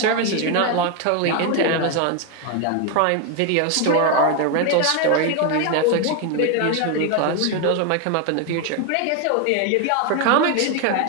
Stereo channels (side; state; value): both; different; correlation 0.01